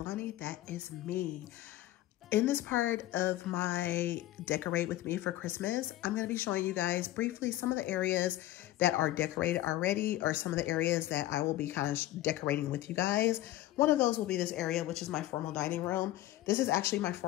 That is me. In this part of my Decorate With Me for Christmas, I'm going to be showing you guys briefly some of the areas that are decorated already, or some of the areas that I will be kind of decorating with you guys. One of those will be this area, which is my formal dining room. This is actually my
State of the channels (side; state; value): right; quieter; 15.3 dB